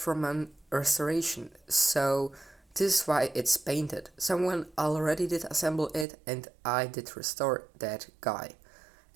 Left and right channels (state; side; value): drops out; left; at 6.1 s